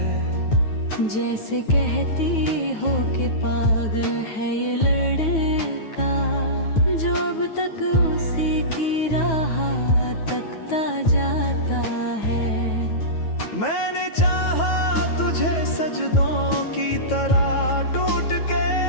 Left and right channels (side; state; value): right; late; 9.3 ms